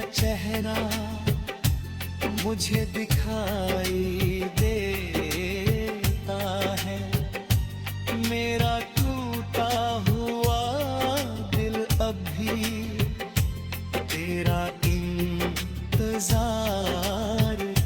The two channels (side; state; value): both; identical; correlation 1.00